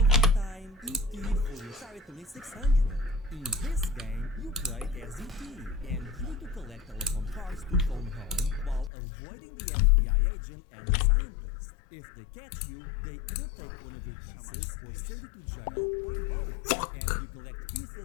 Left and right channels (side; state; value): right; drops out; at 8.9 s